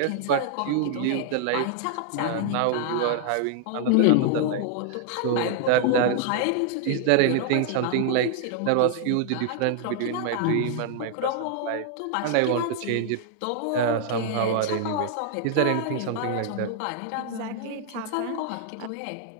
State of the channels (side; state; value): both; different; correlation 0.00